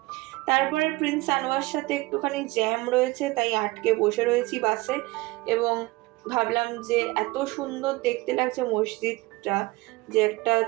তারপরে প্রিন্স আনোয়ার সাথে একটুখানি জ্যাম রয়েছে, তাই আটকে বসে রয়েছি বাসে এবং ভাবলাম যে এত সুন্দর দেখতে লাগছে মসজিদটা যে একটা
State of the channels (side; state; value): left; quieter; 21.7 dB